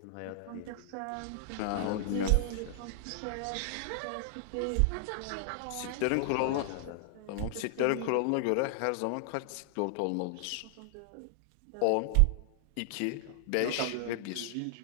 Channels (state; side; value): different; both; correlation -0.01